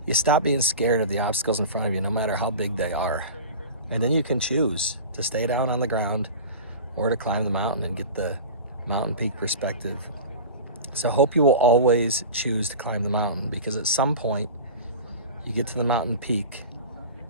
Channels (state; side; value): inverted; both; correlation -0.33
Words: You stop being scared of the obstacles in front of you, no matter how big they are. And then you can choose to stay down on the ground or to climb the mountain and get the mountain peak perspective. So I hope you will always choose to climb the mountain, because at some point you get to the mountain peak